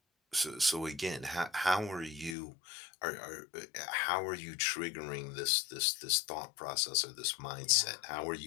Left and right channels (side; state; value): right; drops out; at 2.4 s